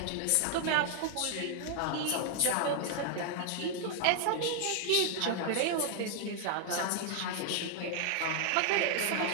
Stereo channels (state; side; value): different; both; correlation 0.00